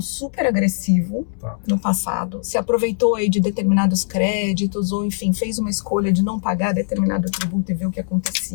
super agressivo no passado, se aproveitou aí de determinados créditos ou, enfim, fez uma escolha de não pagar determinado tributo e ver o que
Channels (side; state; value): right; silent; 63 dB below the other